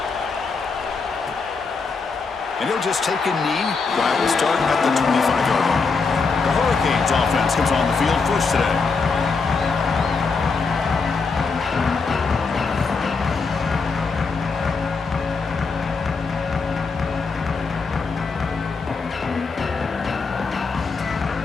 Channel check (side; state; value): right; quieter; 4.6 dB